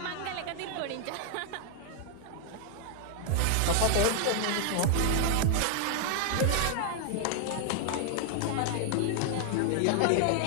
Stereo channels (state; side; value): different; both; correlation 0.00